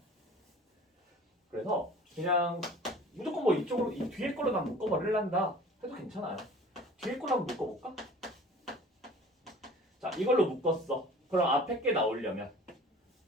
그래서 그냥 무조건 뭐 이쪽으로 이 뒤에 걸로 난 묶어버릴란다 해도 괜찮아요. 뒤에 걸로 한번 묶어볼까? 자, 이걸로 묶었어. 그럼 앞에 게 나오려면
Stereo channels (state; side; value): normal; both; correlation 0.46